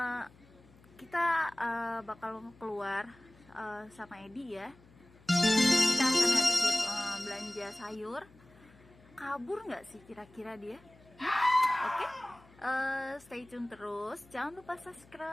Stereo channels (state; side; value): noise; left; hum, 26 dB below the sound